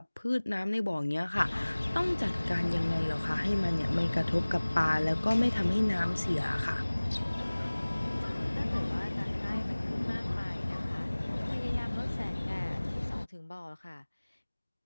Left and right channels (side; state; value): both; inverted; correlation -1.00